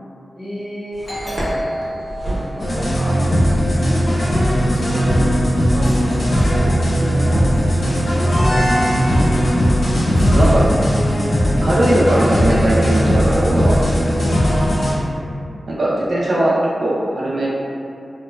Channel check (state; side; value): normal; both; correlation 0.94